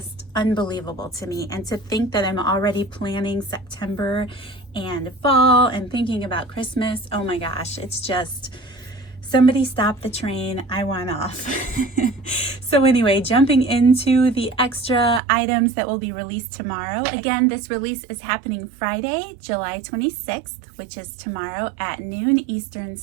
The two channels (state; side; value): drops out; left; at 15.2 s